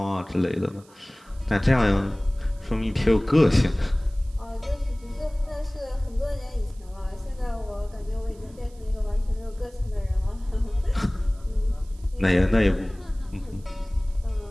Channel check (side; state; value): right; noise; hiss, 28 dB below the sound